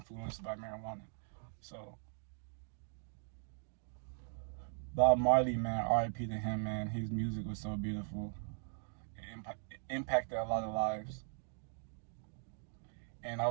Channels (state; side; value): silent; left; digital silence